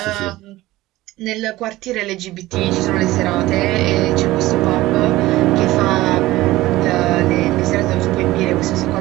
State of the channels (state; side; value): quieter; left; 17.5 dB